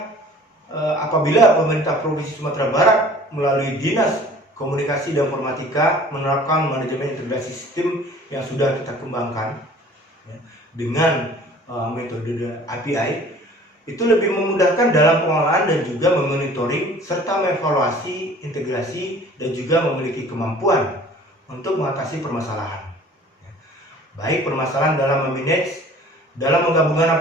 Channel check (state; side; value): normal; both; correlation 0.48